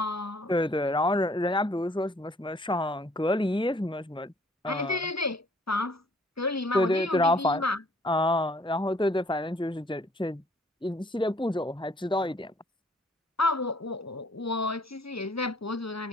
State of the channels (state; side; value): normal; both; correlation 0.60